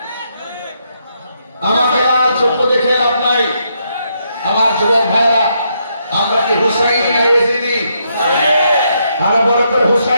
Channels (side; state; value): both; inverted; correlation -0.77